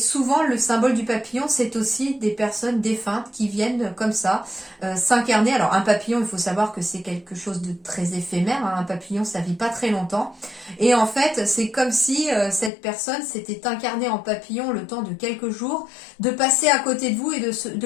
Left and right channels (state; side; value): drops out; right; at 12.7 s